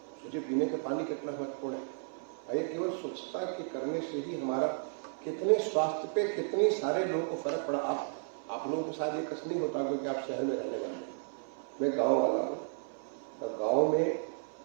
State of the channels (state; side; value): silent; left; 55 dB below the other